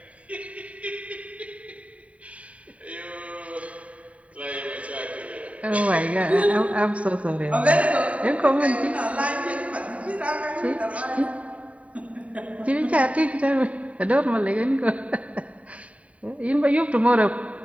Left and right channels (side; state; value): left; late; 0.067 ms